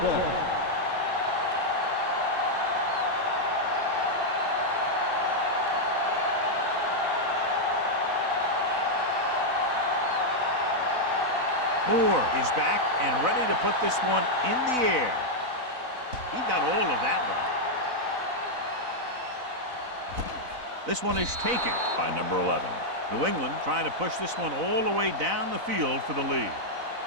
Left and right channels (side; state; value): left; late; 4.0 ms